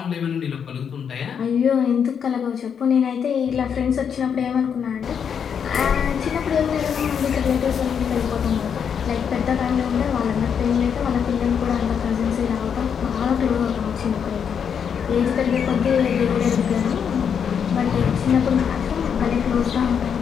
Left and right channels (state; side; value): quieter; right; 7.4 dB